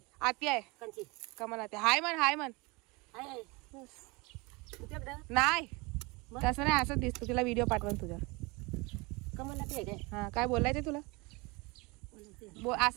आती आहे. कंची कमल आते. हाय म्हण आहे नाही तसं नाही, असं दिसतो. तिला व्हिडिओ पाठवून तुझ्या. कमल आहे काय? हा काय बोलायचं तुला?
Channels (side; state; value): left; quieter; 26.2 dB